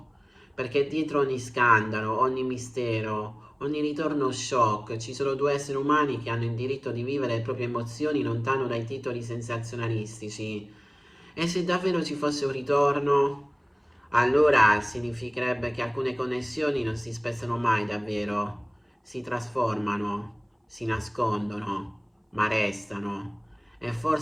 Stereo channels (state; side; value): identical; both; correlation 1.00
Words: perché dietro ogni scandalo, ogni mistero, ogni ritorno shock ci sono due esseri umani che hanno il diritto di vivere le proprie emozioni lontano dai titoli sensazionalistici. E se davvero ci fosse un ritorno, allora significherebbe che alcune connessioni non si spezzano mai davvero, si trasformano, si nascondono, ma restano. E